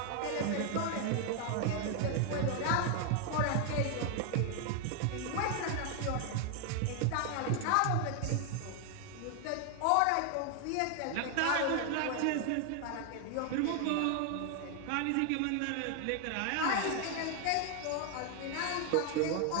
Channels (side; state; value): both; different; correlation 0.01